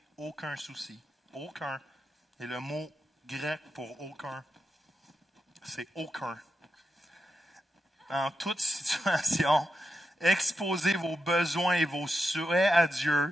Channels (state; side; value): normal; both; correlation 0.87